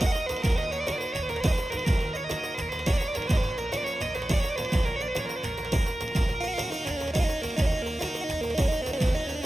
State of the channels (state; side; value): normal; both; correlation 0.94